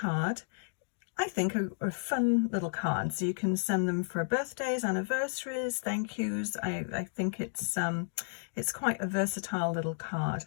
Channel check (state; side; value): silent; right; digital silence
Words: I think, are fun little cards. You can send them for birthdays, anniversaries, thank yous. I think it's quite a versatile little card.